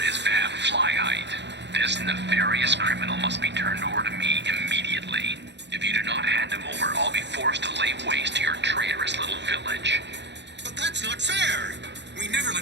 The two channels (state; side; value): late; left; 0.51 ms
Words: is Van Flyheight. This nefarious criminal must be turned over to me immediately. If you do not hand him over, I'll be forced to lay waste to your traitorous little village. But that's not fair! We never